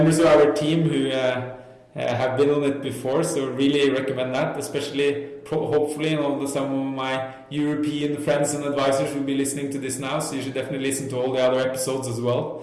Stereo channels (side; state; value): both; identical; correlation 1.00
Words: of our team who have been on it before. So really recommend that, especially hopefully some of my European friends and advisors will be listening to this now. So you should definitely listen to all the other episodes as well.